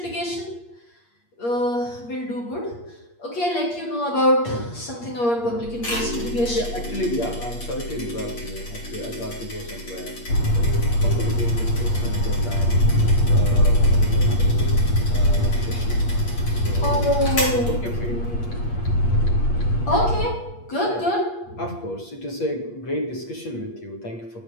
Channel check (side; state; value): right; late; 8.5 ms